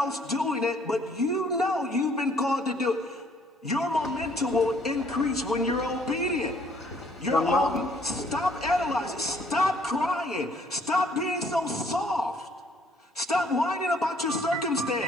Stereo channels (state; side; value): normal; both; correlation 0.62